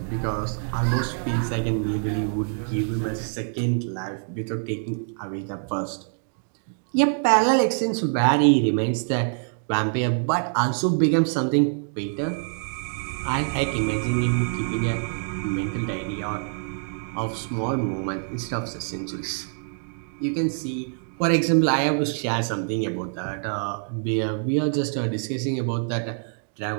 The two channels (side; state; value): left; silent; digital silence